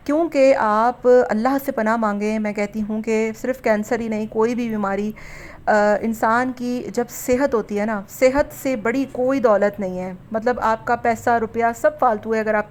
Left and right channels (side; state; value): both; identical; correlation 1.00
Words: क्योंकि आप अल्लाह से पनाह मांगें। मैं कहती हूँ कि सिर्फ़ कैंसर ही नहीं, कोई भी बीमारी इंसान की जब सेहत होती है ना, सेहत से बड़ी कोई दौलत नहीं है। मतलब आपका पैसा रुपया सब फालतू है अगर